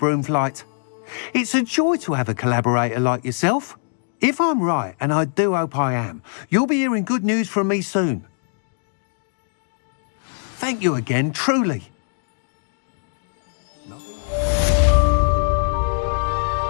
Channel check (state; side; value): silent; right; digital silence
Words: flight. It's a joy to have a collaborator like yourself. If I'm right, and I do hope I am, you'll be hearing good news from me soon. Thank you again, truly.